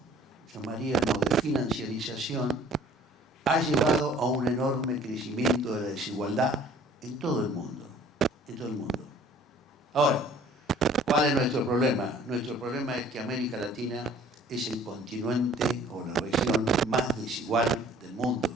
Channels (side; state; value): both; normal; correlation 0.53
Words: llamaríamos, de financiarización, ha llevado a un enorme crecimiento de la desigualdad en todo el mundo. En todo el mundo. Ahora, ¿cuál es nuestro problema? Nuestro problema es que América Latina es el continente o la región más desigual del mundo.